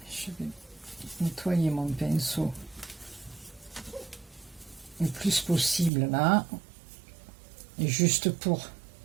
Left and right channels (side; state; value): left; drops out; at 5.9 s